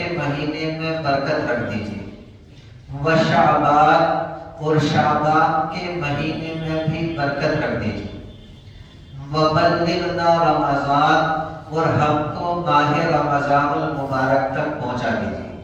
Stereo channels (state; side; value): identical; both; correlation 1.00